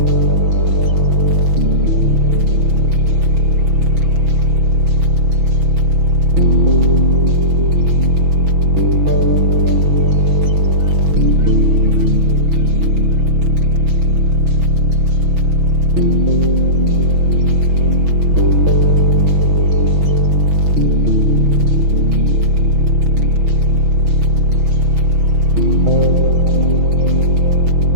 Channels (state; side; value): late; left; 6.1 ms